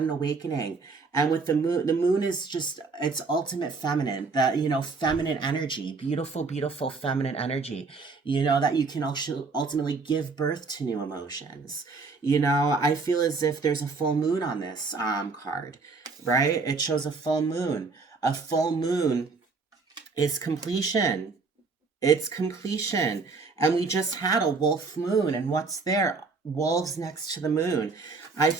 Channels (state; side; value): quieter; left; 4.3 dB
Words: awakening, and with the moon is just it's ultimate feminine, the feminine energy, beautiful, beautiful feminine energy. You know that you can also ultimately give birth to new emotions. You know, I feel as if there's a full moon on this card, right? It shows a full moon. A full moon is completion. It's completion. And we just had a wolf moon. And what's there? Wolves next to the moon. I